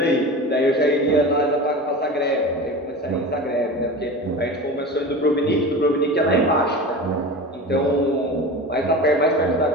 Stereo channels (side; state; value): both; normal; correlation 0.31